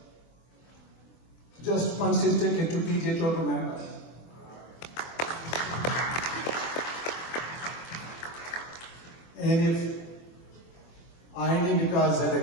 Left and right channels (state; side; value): late; right; 24 ms